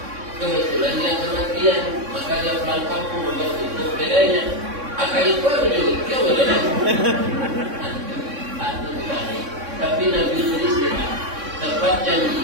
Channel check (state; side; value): late; left; 3.6 ms